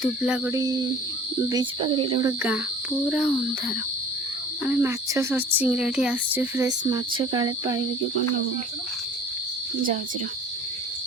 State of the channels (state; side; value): normal; both; correlation 0.47